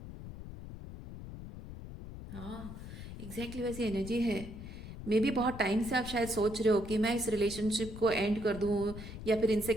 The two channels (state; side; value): noise; left; rumble, 11 dB below the sound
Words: हाँ, एग्जैक्टली वैसी एनर्जी है। मे भी बहुत टाइम से आप शायद सोच रहे हो कि मैं इस रिलेशनशिप को एंड कर दूं, या फिर इनसे